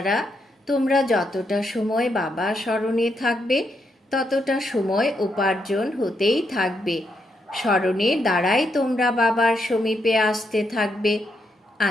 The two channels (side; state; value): both; normal; correlation 0.80